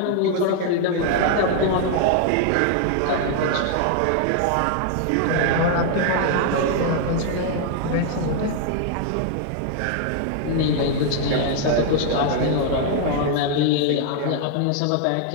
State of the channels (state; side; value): different; both; correlation 0.00